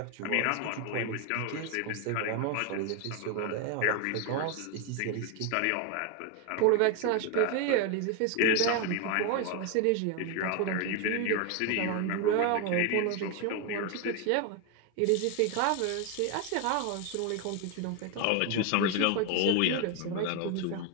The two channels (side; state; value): both; different; correlation 0.01